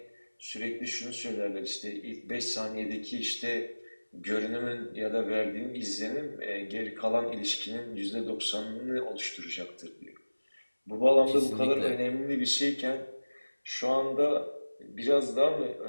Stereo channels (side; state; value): both; inverted; correlation -1.00